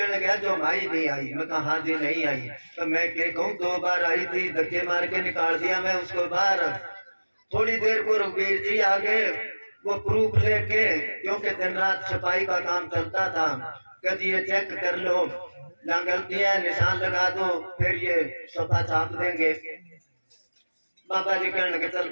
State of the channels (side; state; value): both; inverted; correlation -1.00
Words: लगा जो भाई नहीं आई, मैं कहा हाँ जी नहीं आई। तो मैं क्या कहूँ 2 बार आई थी, धक्के मार के निकाल दिया मैं उसको बाहर। थोड़ी देर को रघुवीर जी आ गए, वो प्रूफ लेके, क्योंकि दिन रात छपाई का काम चलता था, कभी ये चेक कर लो जहाँ गलती है निशान लगा दो, फिर ये सफा छाप देंगे। बाबा जी कहने लगे चल